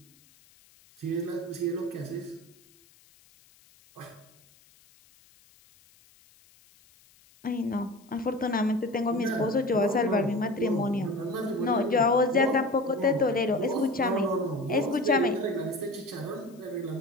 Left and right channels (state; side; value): noise; left; hiss, 29 dB below the sound